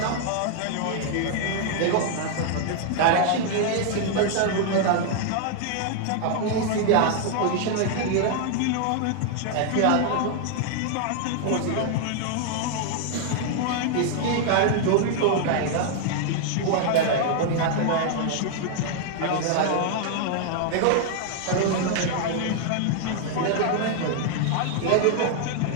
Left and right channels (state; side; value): different; both; correlation 0.00